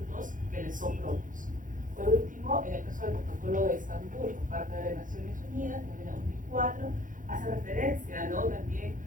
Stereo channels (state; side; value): late; left; 0.38 ms